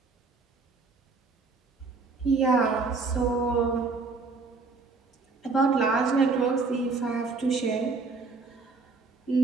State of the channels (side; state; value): left; quieter; 4.2 dB